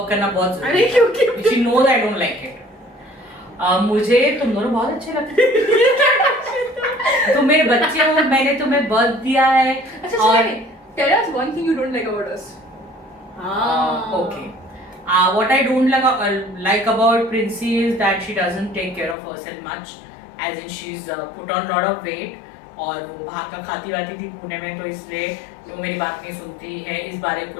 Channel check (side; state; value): right; drops out; at 19.2 s